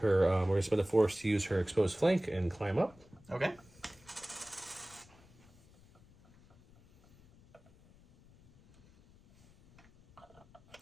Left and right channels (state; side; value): noise; left; rumble, 26 dB below the sound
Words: her, we're going to spend the force to use her exposed flank and climb up. Okay.